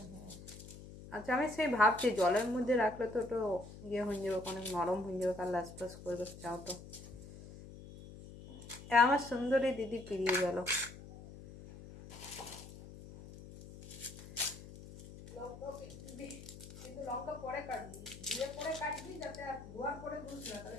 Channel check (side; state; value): left; noise; hum, 15 dB below the sound